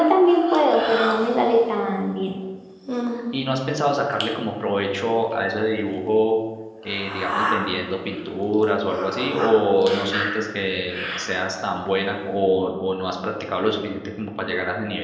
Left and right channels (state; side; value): identical; both; correlation 1.00